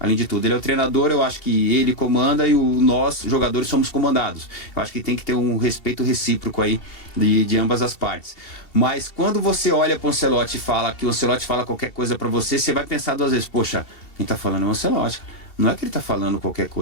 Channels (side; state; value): right; late; 2.7 ms